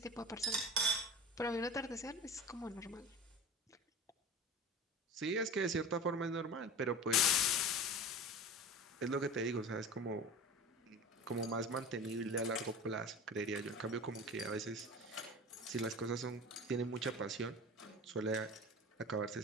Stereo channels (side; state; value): both; normal; correlation 0.33